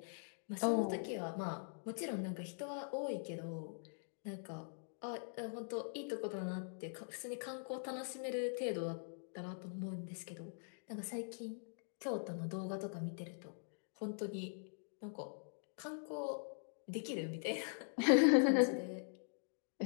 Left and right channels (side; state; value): right; silent; digital silence